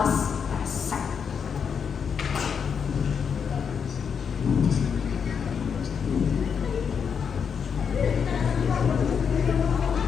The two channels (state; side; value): quieter; right; 6.8 dB